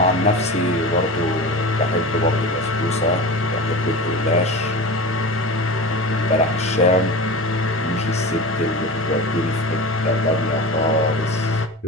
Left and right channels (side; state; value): both; normal; correlation 0.30